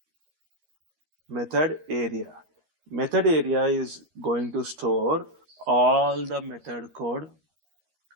Method area. Method area is going to store all the method code.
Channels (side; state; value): left; late; 13 ms